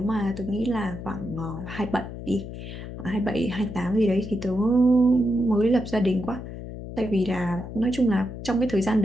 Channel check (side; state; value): left; noise; hum, 10 dB below the sound